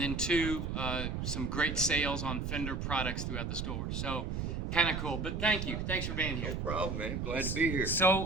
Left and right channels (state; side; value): noise; right; rumble, 2 dB below the sound